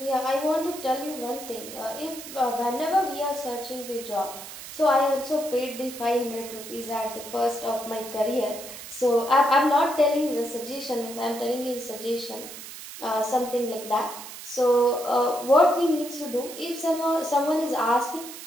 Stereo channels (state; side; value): noise; right; hiss, 12 dB below the sound